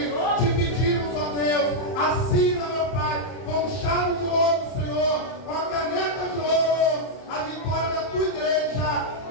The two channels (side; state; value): right; late; 31 ms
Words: te pedimos, ó Deus, assina, meu Pai, com chave de ouro, Senhor, com a caneta de ouro, a vitória da tua igreja,